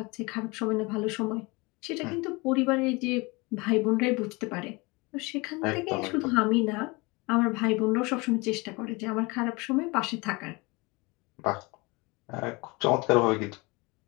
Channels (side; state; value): right; quieter; 25.8 dB